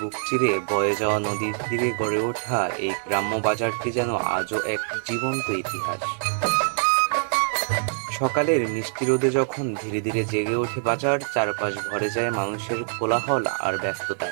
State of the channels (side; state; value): left; silent; digital silence